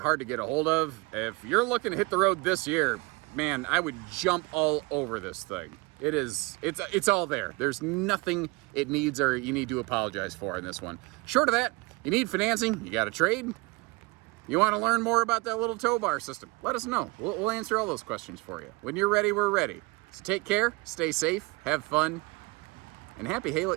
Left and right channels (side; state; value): left; quieter; 25.7 dB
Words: to get a hold of. If you're looking to hit the road this year, man, I would jump all over this thing. It's all there. There's nothing it needs or you need to apologize for in this one. Short of that, you need financing, you got a trade, you want to learn more about that little tow bar system, let us know. We'll answer all those questions for you. When you're ready, we're ready. So take care, stay safe, have fun, and happy